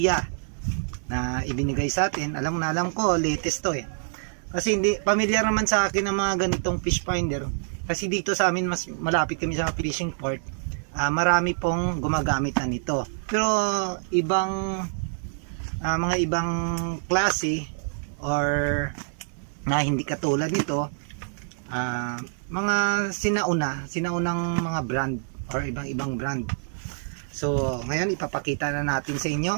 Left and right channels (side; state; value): left; silent; 61 dB below the other